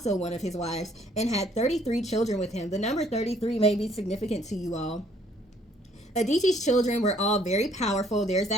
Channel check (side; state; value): both; normal; correlation 0.63